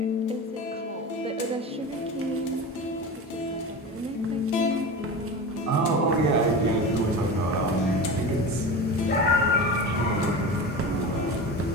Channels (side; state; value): both; normal; correlation 0.29